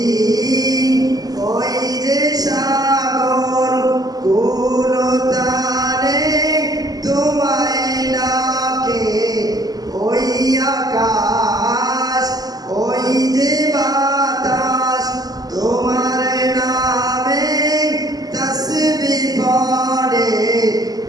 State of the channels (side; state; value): left; late; 0.18 ms